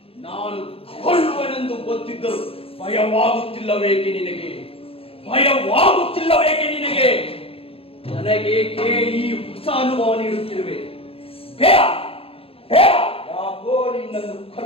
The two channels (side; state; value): right; late; 0.27 ms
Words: ನಾನು ಕೊಲ್ಲುವನೆಂದು ಗೊತ್ತಿದ್ದರು ಭಯವಾಗುತ್ತಿಲ್ಲವೇಕೆ ನಿನಗೆ? ನನಗೇಕೆ ಈ ಹೊಸ ಅನುಭವ ನೀಡುತ್ತಿರುವೆ? ಯಾಕೋ ನಿನ್ನನ್ನು